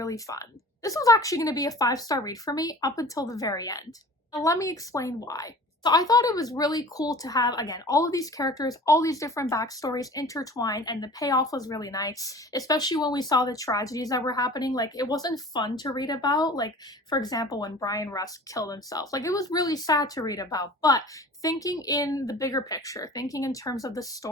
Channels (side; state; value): both; normal; correlation 0.43